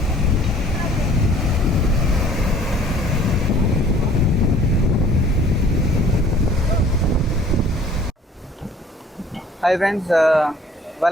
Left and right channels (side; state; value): both; normal; correlation 0.54